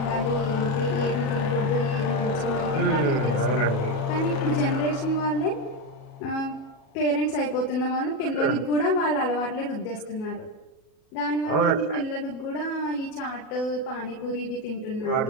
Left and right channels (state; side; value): late; right; 37 ms